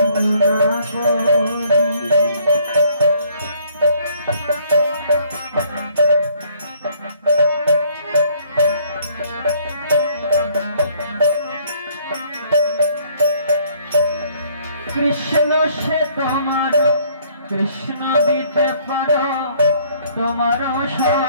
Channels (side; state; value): both; inverted; correlation -0.61